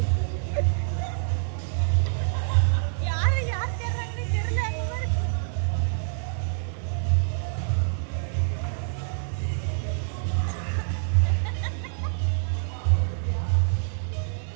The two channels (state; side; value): silent; left; 61 dB below the other